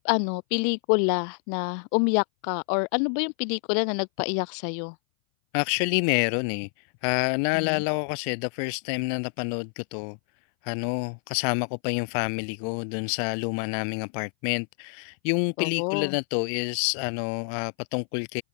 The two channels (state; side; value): silent; right; 58 dB below the other